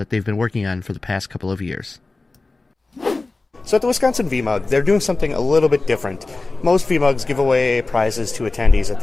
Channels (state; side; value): quieter; right; 3.4 dB